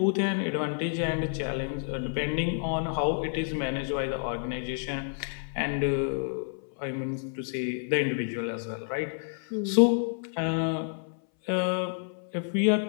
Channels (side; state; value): right; silent; 58 dB below the other